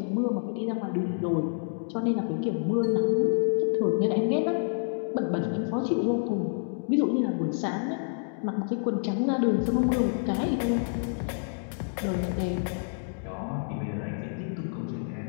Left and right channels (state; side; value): silent; right; digital silence